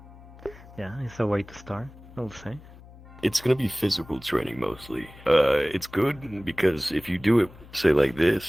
Yeah, it's a way to start, I would say. It's gonna be physical training mostly. It's good because if you do it, say like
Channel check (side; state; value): left; noise; hum, 20 dB below the sound